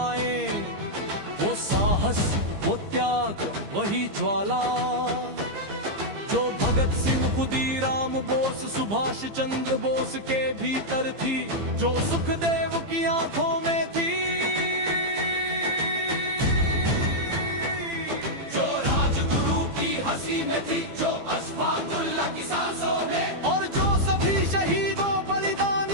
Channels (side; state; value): left; late; 15 ms